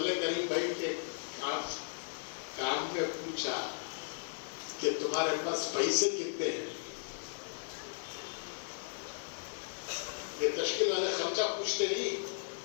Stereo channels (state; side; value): silent; right; digital silence